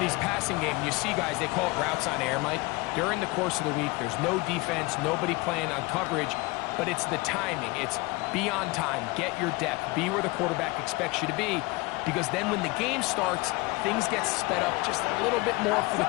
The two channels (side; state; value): right; quieter; 23.8 dB